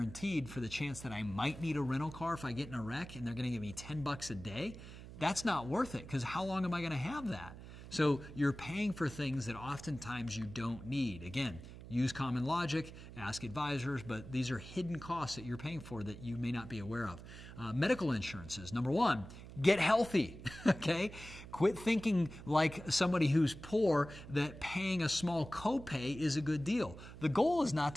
for the chance that I might need a rental car if I get in a wreck and they're going to give me $10 a day, that's not worth it because how long am I going to have that? So you're paying for things that oftentimes you don't need. Again, use common logic, ask advisors, but these are hidden costs that you're paying for that you may not be aware of. Medical insurances. Number one, get healthy, okay? Quit thinking like somebody who's poor that paying a small copay is a good deal. The goal is not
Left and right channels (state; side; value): noise; right; hum, 14 dB below the sound